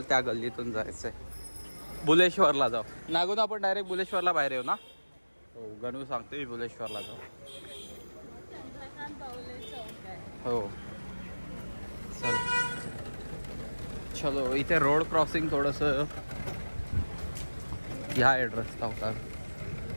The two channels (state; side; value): inverted; both; correlation -1.00